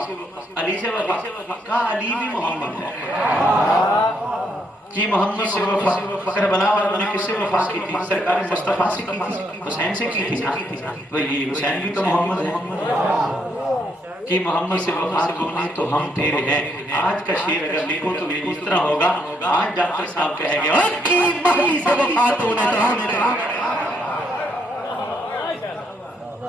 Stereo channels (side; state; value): both; normal; correlation 0.74